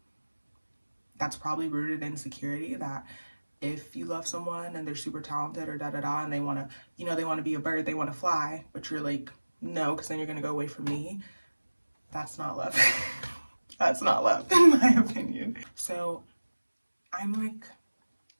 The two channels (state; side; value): inverted; both; correlation -1.00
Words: that's probably rooted in insecurity, that if you love someone and they're super talented or da da da and they want to, you know, they want to be a bird, they want to fly, but you're like, no, because then you're going to go away from me. That's not love. That's not love in my opinion. So I'm